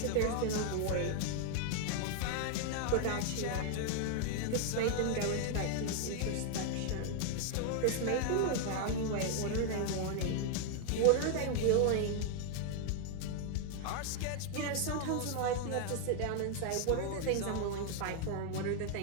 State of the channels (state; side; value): different; both; correlation 0.00